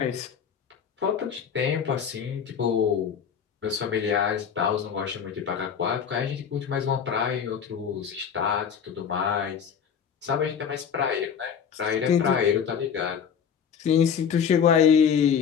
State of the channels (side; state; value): right; quieter; 7.4 dB